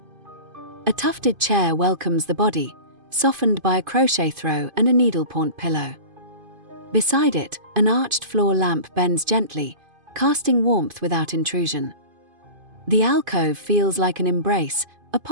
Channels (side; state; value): left; late; 2.5 ms